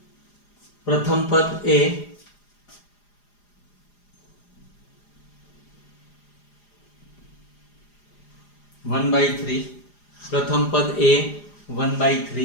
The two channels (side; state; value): right; late; 4.9 ms